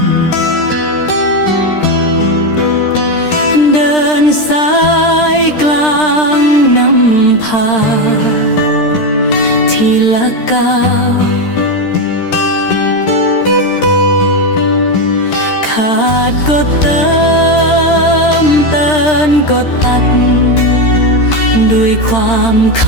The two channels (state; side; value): late; right; 13 ms